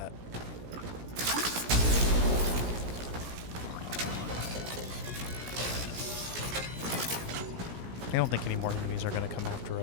I don't think any more enemies are going to come after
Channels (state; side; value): late; left; 17 ms